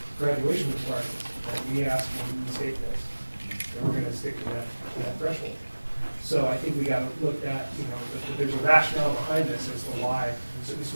graduation requirements that we ask when the state does. And we're going to stick to that threshold. So I think we got to look at, that there's a rationale behind this as to why certain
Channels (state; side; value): inverted; both; correlation -1.00